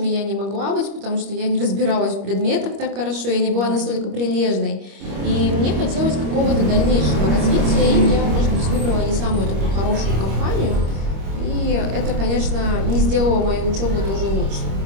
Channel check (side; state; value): left; late; 25 ms